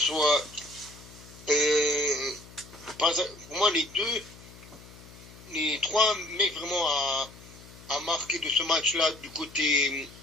pour moi les 3 mecs vraiment à marquer de ce match-là du côté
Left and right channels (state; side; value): noise; left; hum, 20 dB below the sound